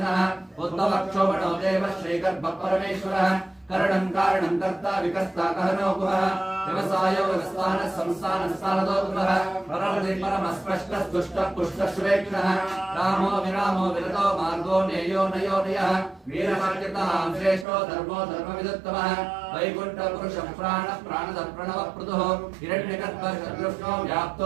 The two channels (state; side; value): drops out; left; at 17.7 s